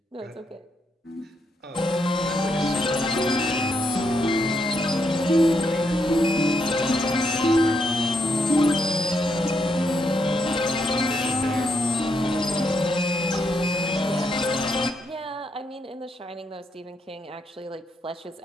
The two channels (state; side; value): normal; both; correlation 0.78